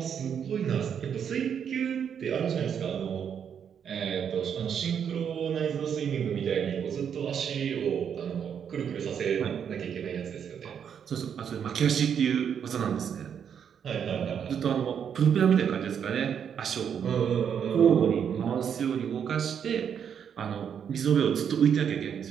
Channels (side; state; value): left; quieter; 7.9 dB